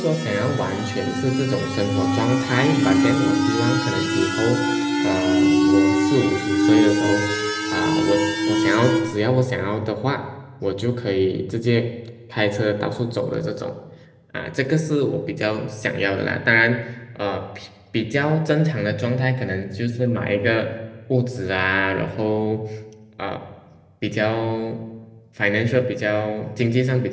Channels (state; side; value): identical; both; correlation 1.00